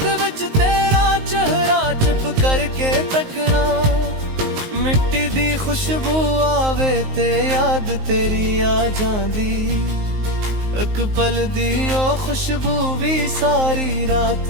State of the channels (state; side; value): late; left; 19 ms